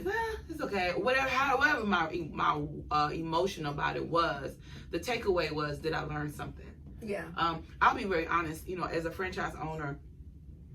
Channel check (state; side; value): identical; both; correlation 1.00